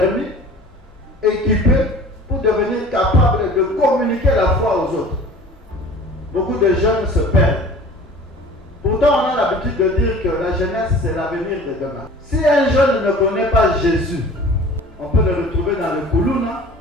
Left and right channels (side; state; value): both; normal; correlation 0.44